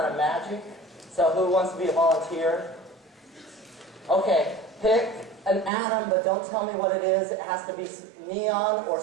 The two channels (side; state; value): left; drops out; at 5.7 s